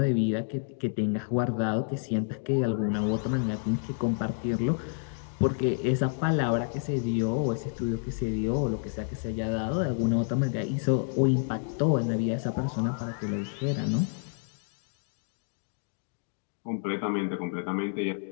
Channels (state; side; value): silent; right; digital silence